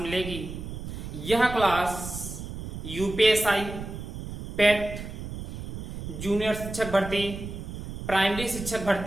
यह क्लास यूपीएसआई, पेट, जूनियर शिक्षक भर्ती, प्राइमरी शिक्षक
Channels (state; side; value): noise; right; rumble, 8 dB below the sound